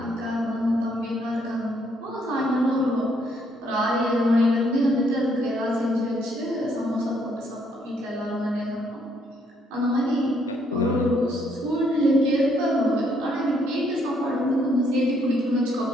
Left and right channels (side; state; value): both; normal; correlation 0.70